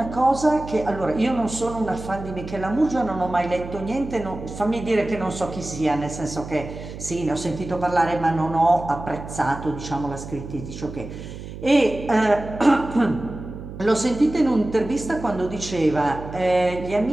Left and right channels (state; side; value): noise; right; hum, 11 dB below the sound